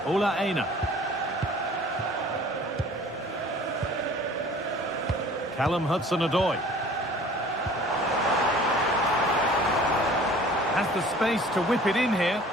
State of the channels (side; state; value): both; normal; correlation 0.49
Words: Ola Aina. Callum Hudson-Odoi. Has the space to whip it in here.